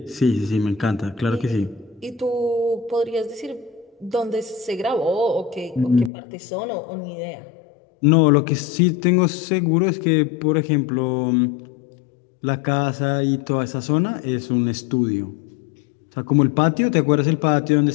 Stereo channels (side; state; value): right; drops out; at 6.1 s